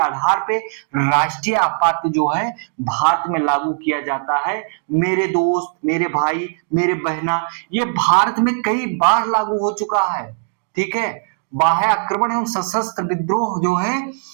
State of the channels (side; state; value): left; silent; digital silence